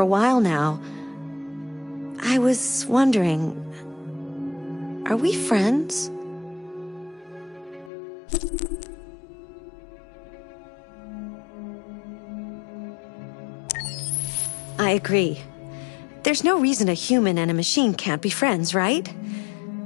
while now. I was wondering, are we friends? I agree. There's no reason a human and a machine can't be friends, right?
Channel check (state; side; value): drops out; right; at 7.9 s